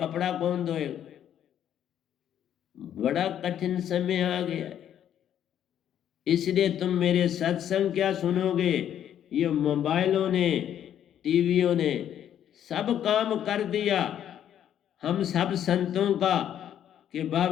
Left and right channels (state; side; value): quieter; right; 10.2 dB